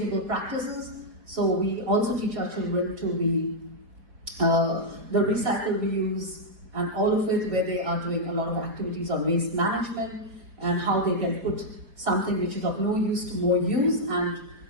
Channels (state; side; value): late; left; 4.4 ms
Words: practices. So we also teach our children to be the recycle, reuse, and all of it, where they are doing a lot of activities on waste management and how they can put something which is of no use to more use, and